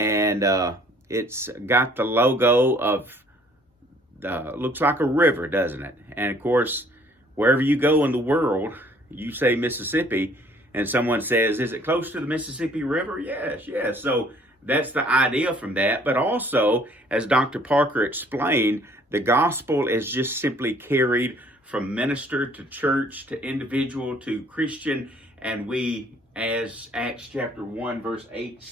it's got the logo of, looks like a river, doesn't it? And of course, wherever you go in the world, you say Mississippi, and someone says, is it close to the Mississippi River? Yes, yes. So that's the idea from that. But also, as Dr. Parker explained, the gospel is just simply carried from minister to church to individual to Christian. And we, as Acts chapter 1, verse 8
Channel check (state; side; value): normal; both; correlation 0.59